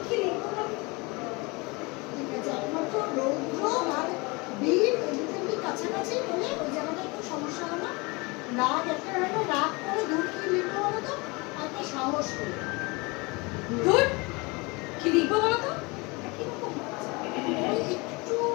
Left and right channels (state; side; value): quieter; right; 26.4 dB